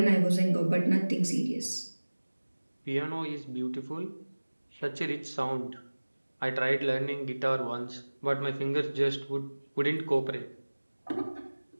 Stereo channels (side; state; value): both; inverted; correlation -1.00